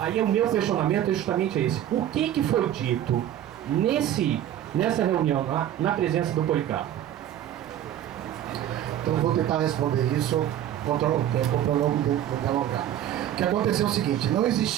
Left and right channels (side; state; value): left; quieter; 11.4 dB